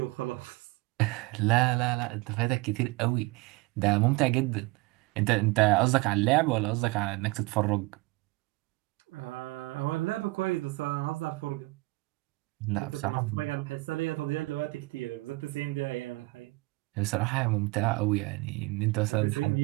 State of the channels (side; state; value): left; quieter; 23.3 dB